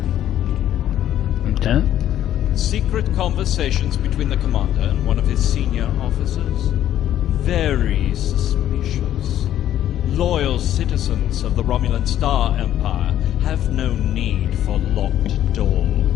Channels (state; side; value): quieter; right; 11.7 dB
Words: Lieutenant? Secret conversations between the commander and one of his senior officers. Very suspicious. Loyal citizens of the Romulan Star Empire have no need for locked